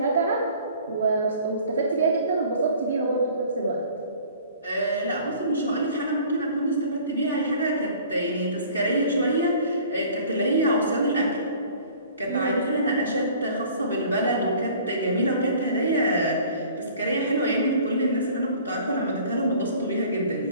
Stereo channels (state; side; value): inverted; both; correlation -0.50